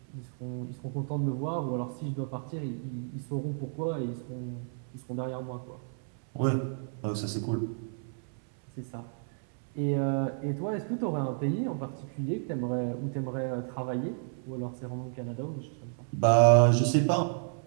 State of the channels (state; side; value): silent; left; 57 dB below the other